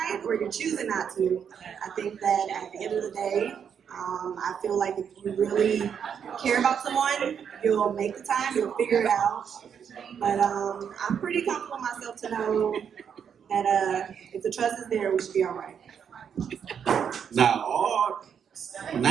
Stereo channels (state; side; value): quieter; left; 7.6 dB